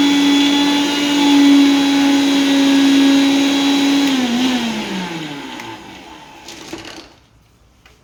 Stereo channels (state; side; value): identical; both; correlation 1.00